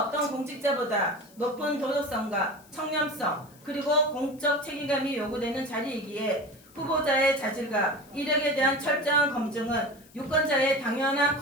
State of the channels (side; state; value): left; noise; hiss, 26 dB below the sound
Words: 공직자보다 높은 도덕성과 청렴성 그리고 공적 책임감이 요구되는 자리이기에 후보자의 자질과 이력에 대한 철저한 검증은 유권자의 당연한